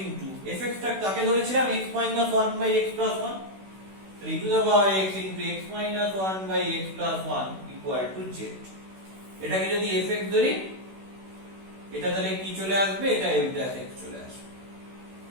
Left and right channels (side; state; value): left; late; 16 ms